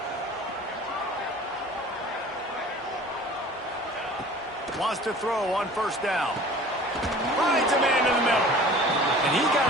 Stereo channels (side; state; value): both; normal; correlation 0.45